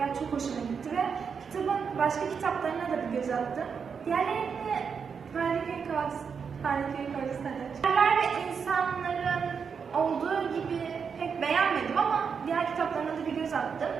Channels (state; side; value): quieter; left; 6.2 dB